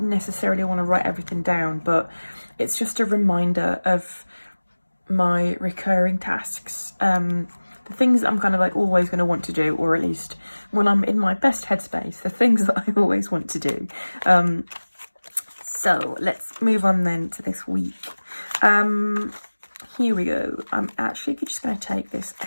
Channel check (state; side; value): inverted; both; correlation -1.00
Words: necessarily want to write everything down, but it's just a reminder of my recurring tasks. The things that I'm kind of like always going to want to do, or at least when I'm in my best headspace, the things that I always want to do. So let's move on then to this week. Here we go. I'm actually just going to take this